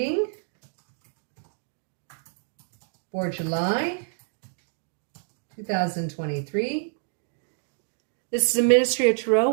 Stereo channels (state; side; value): silent; left; digital silence